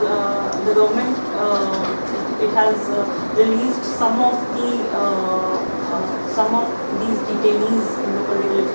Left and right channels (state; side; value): inverted; both; correlation -1.00